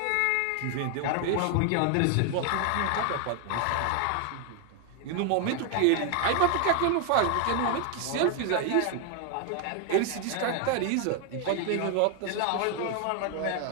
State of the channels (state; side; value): different; both; correlation 0.01